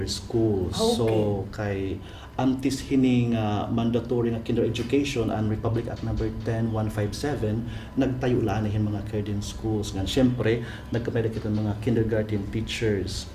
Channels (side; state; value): both; identical; correlation 1.00